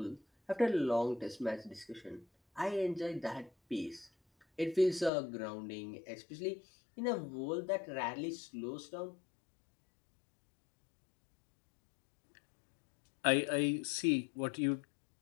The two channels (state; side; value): drops out; right; at 5.1 s